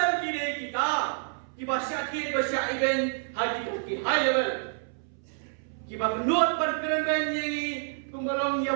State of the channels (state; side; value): silent; left; 59 dB below the other